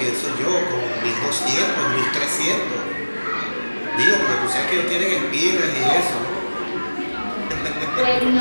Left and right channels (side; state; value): both; inverted; correlation -1.00